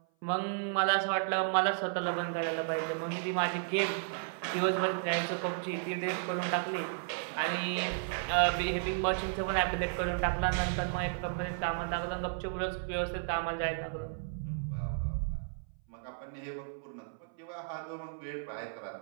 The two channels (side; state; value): left; silent; 55 dB below the other